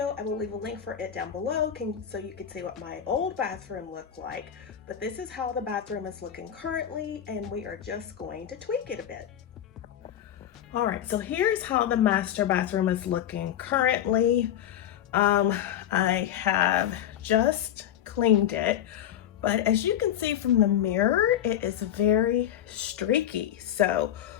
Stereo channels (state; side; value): quieter; right; 10.5 dB